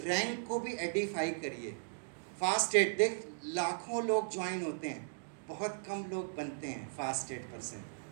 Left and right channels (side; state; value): left; silent; digital silence